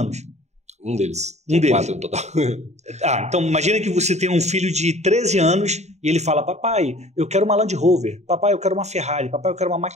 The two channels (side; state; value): left; late; 0.32 ms